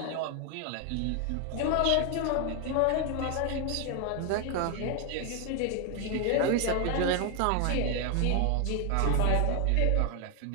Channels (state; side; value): different; both; correlation 0.00